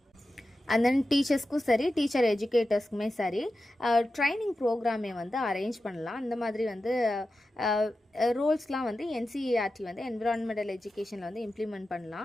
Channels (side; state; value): both; normal; correlation 0.92